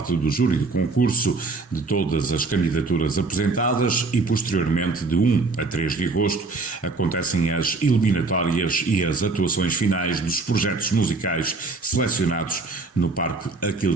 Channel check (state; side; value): quieter; left; 3.8 dB